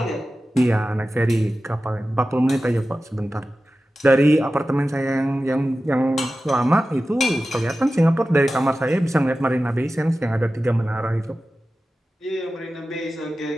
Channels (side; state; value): both; normal; correlation 0.94